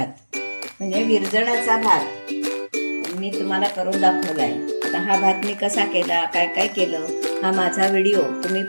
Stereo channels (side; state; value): both; inverted; correlation -1.00